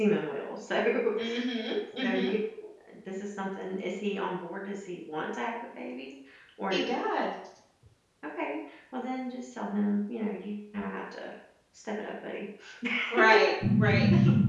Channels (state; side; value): identical; both; correlation 1.00